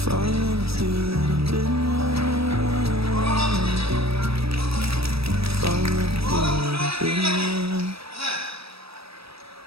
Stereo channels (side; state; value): left; late; 0.77 ms